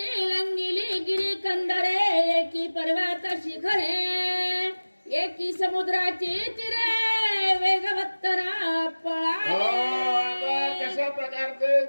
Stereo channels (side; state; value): both; inverted; correlation -1.00